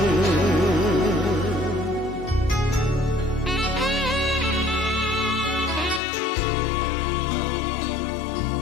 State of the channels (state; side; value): drops out; right; at 6.0 s